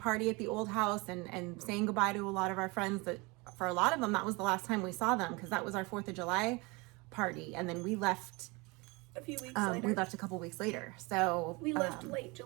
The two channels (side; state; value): left; quieter; 26.3 dB